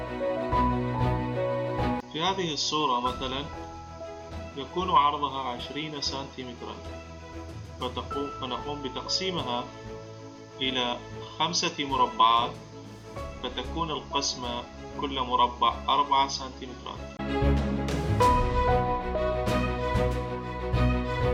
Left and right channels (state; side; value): identical; both; correlation 1.00